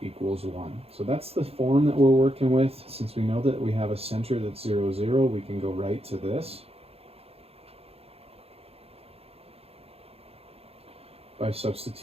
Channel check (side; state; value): left; late; 0.29 ms